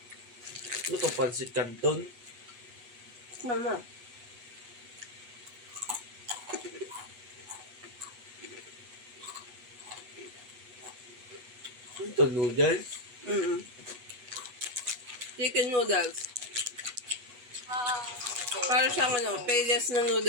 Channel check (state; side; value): late; left; 8.1 ms